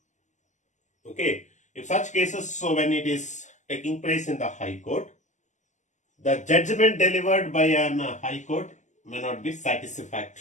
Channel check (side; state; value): right; late; 0.34 ms